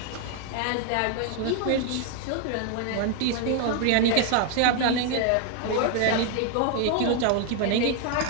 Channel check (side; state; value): both; different; correlation 0.00